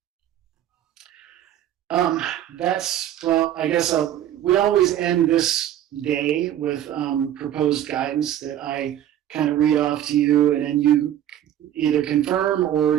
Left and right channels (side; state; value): left; quieter; 11.5 dB